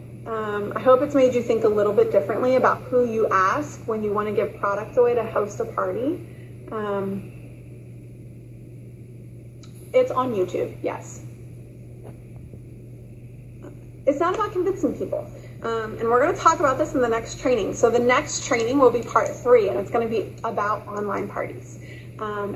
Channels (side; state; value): both; identical; correlation 1.00